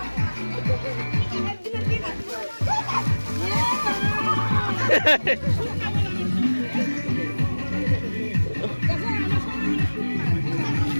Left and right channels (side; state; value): both; inverted; correlation -1.00